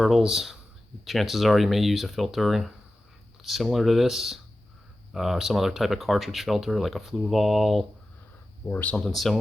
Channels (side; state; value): both; normal; correlation 0.94